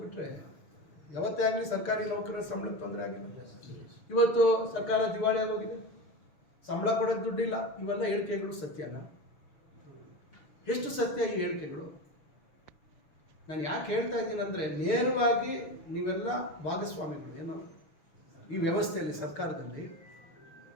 ಬಿಟ್ಟರೆ ಯಾವತ್ತೇ ಆಗಲಿ ಸರ್ಕಾರಿ ನೌಕರರ ಸಂಬಳಕ್ಕೆ ತೊಂದರೆ ಆಗಿಲ್ಲ. ಇವತ್ತು ಸರ್ಕಾರ ದಿವಾಳಿ ಆಗೋಗಿದೆ, ಸಂಬಳ ಕೊಡೋದು ದುಡ್ಡಿಲ್ಲ. ಇವೆಲ್ಲ ಹೇಳಿಕೆಗಳು ಸತ್ಯನ? ಎಷ್ಟು ಸತ್ಯ ಈ ಹೇಳಿಕೆಗಳು? ನಾನು ಯಾಕೆ ಹೇಳ್ತಾ ಇದ್ದೀನಿ ಅಂದರೆ, ನೇರವಾಗಿ ನೀವೆಲ್ಲ ಭಾಗಸ್ವಾಮಿಗಳು ಏನೋ ಈ ವ್ಯವಸ್ಥೆಯಲ್ಲಿ, ಸರ್ಕಾರದಲ್ಲಿ.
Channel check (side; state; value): right; late; 6.6 ms